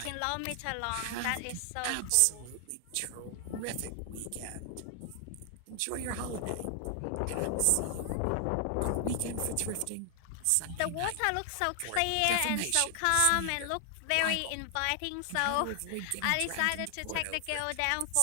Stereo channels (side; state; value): both; different; correlation 0.00